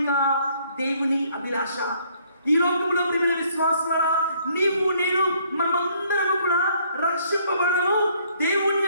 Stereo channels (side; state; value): both; inverted; correlation -0.65